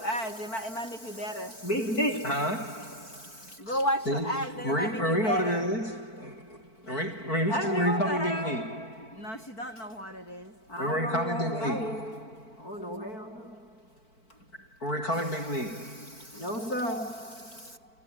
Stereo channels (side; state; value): right; late; 4.5 ms